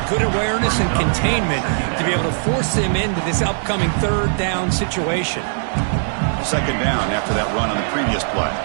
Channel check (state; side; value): silent; left; 66 dB below the other